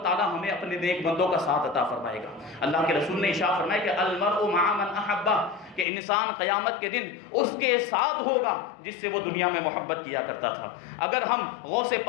تعالی ہمیں اپنے نیک بندوں کا ساتھ عطا فرمائے گا۔ اللہ کے رسول نے ارشاد فرمایا کہ المرء مع من احبہ، کہ انسان قیامت کے دن اس کے ساتھ ہوگا جس سے وہ دنیا میں محبت کیا کرتا تھا۔ اگر ہم غوث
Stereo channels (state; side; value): drops out; right; at 5.9 s